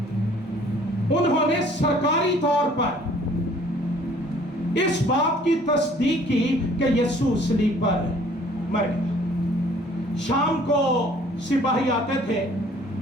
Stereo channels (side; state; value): both; normal; correlation 0.56